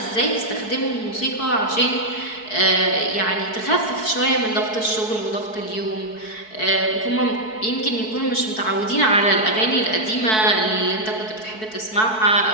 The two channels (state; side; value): late; right; 4.6 ms